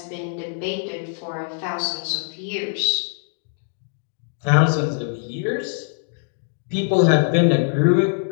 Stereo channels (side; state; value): right; silent; digital silence